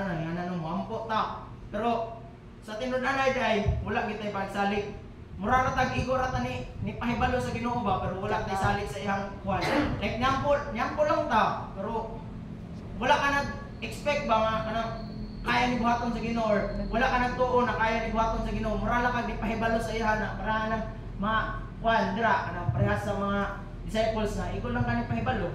na ngana no moampo ta pero sa tinud-anay day wala gitay pagsalig mura ra tag igor ata ni pahibalo sa Ginoo ba pero wala tay salig sa iyang kuan like nyampo lang ta pero wala ka nag-expect ba nga kanang kaya ni buhaton sa Ginoo or wala ka nagtuo na kaya ni buhaton sa Ginoo mura lang kag di pahibalo sa iya na para nang kuan dira kanang parehas sa mga disciples na ikaw lang kani pahibalo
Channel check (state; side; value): identical; both; correlation 1.00